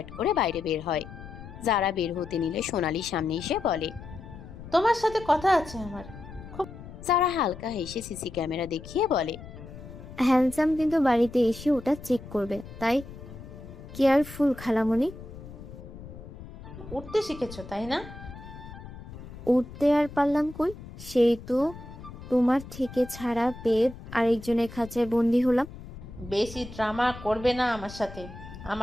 করে বাইরে বের হয়। যারা বের হতে নিলে সোনালি সামনে এসে বলে, তোমার সাথে কথা আছে আমার। যারা হালকা হেসে সিসি ক্যামেরা দেখিয়ে বলে, হ্যান্ডসাম কিন্তু বাড়িতে এসে ওটা চেক করবে, তাই কেয়ারফুল খালামণি। উঠতে শিখেছো তাই না? উঠতে আর পারলাম কই, সেই তো তোমার থেকে ছাড়া পেয়ে আরেকজনের খাঁচায় বন্দি হলাম। বেশি ড্রামা করবে না আমার সাথে।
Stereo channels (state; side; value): noise; left; rumble, 14 dB below the sound